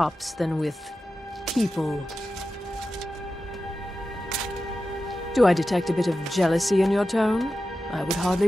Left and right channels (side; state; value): both; normal; correlation 0.92